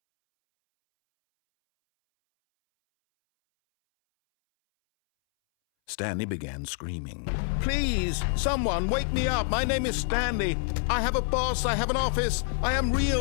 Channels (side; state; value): right; silent; 60 dB below the other